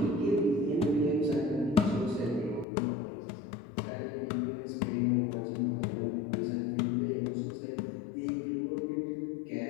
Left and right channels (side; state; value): right; drops out; at 2.7 s